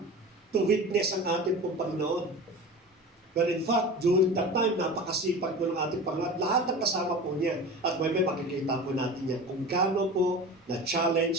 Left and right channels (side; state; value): both; normal; correlation 0.33